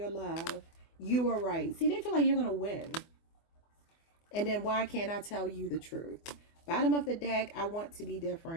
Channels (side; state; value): right; late; 24 ms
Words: love. You are right. See, they feel like you're going to win. And then why can't I tell you the truth? Bottom of the deck, I want to be